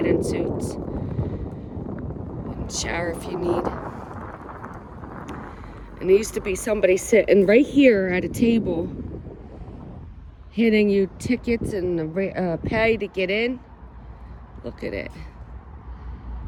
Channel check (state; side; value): identical; both; correlation 1.00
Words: suits. And shower if you need. And there used to be somebody sitting right here at a table handing you tickets and pay to get in. Look at it.